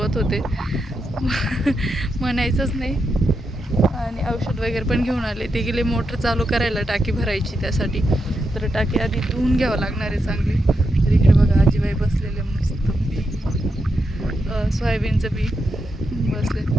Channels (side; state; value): both; normal; correlation 0.85